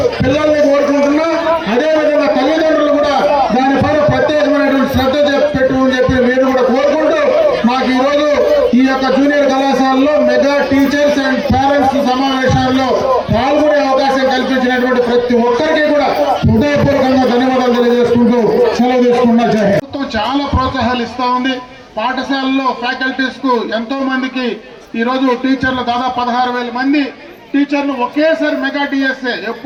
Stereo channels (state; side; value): identical; both; correlation 1.00